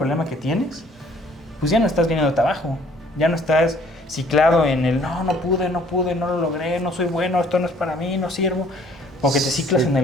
que tienes, pues ya no estás viniéndote abajo, ya no estás ciclado en el no pude, no lo logré, no soy bueno, esto no es para mí, no sirvo, porque te ciclas en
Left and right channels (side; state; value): both; normal; correlation 0.58